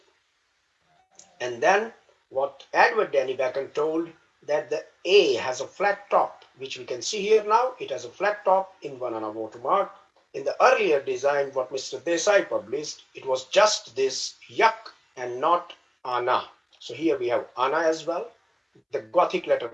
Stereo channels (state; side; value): identical; both; correlation 1.00